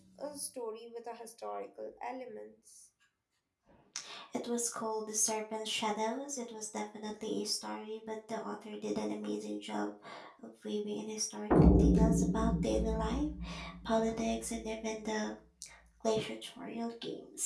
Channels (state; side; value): identical; both; correlation 1.00